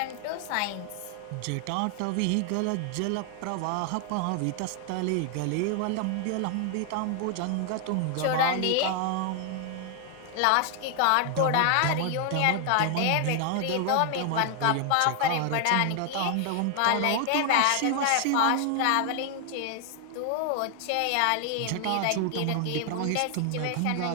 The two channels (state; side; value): different; both; correlation 0.00